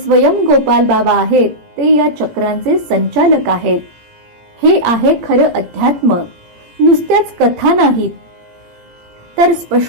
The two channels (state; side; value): late; left; 17 ms